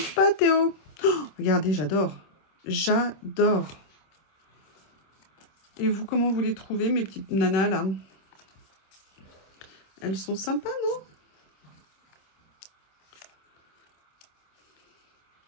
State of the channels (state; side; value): late; right; 26 ms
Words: pas, Théo. Oh, regardez, j'adore. J'adore. Et vous, comment vous les trouvez, mes petites nanas, là? Elles sont sympas,